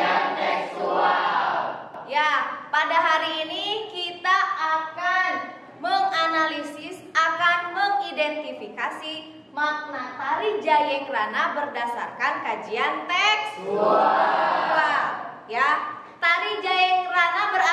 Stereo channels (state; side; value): identical; both; correlation 1.00